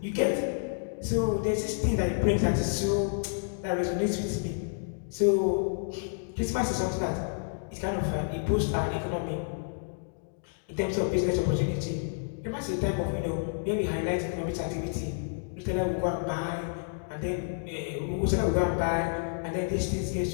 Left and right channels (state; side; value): silent; right; digital silence